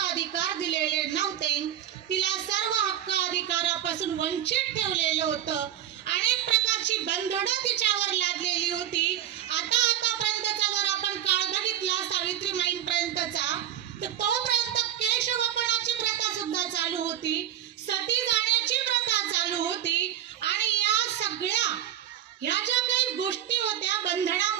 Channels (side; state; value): left; quieter; 11.0 dB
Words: दिलेले नव्हते. तिला सर्व हक्क अधिकारापासून वंचित ठेवलेलं होतं. अनेक प्रकारची बंधनं तिच्यावर लादलेली होती. आतापर्यंतचा जर आपण काळ बघितला सावित्रीबाईंपर्यंतचा, तर तोपर्यंत केशवपणाची प्रथा सुद्धा चालू होती, सती जाण्याची प्रथा चालू होती. आणि या सगळ्या ह्या ज्या काही गोष्टी होत्या